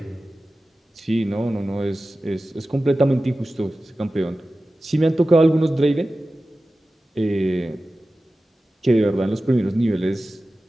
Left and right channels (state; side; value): normal; both; correlation 0.95